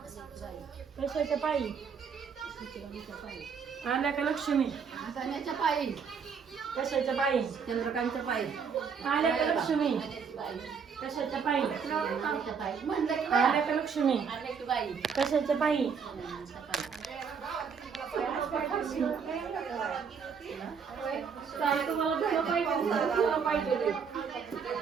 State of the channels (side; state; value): left; quieter; 6.3 dB